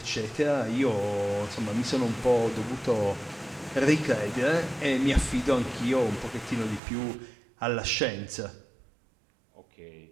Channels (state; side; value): drops out; left; at 6.8 s